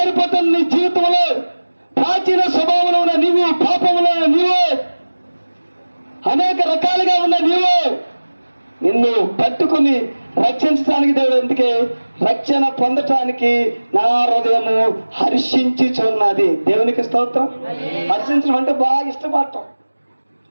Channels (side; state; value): both; inverted; correlation -1.00